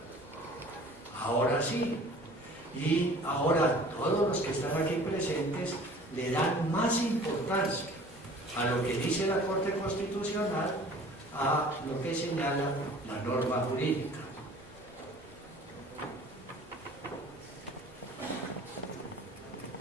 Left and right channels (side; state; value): both; normal; correlation 0.47